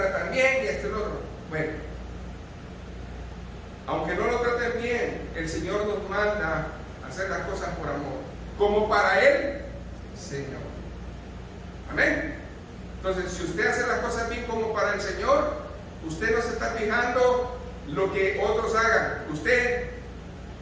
bien y esto y lo otro. Bueno, aunque no lo traten bien, el Señor nos manda a hacer las cosas por amor, como para Él, Señor. Amén. Entonces, si usted hace las cosas bien como para el Señor, usted no se está fijando lo que otros hagan. Usted,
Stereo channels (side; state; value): both; identical; correlation 1.00